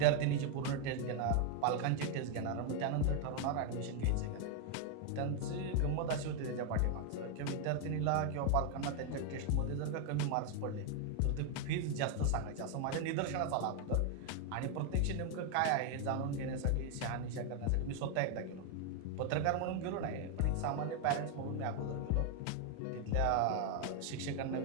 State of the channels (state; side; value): different; both; correlation 0.01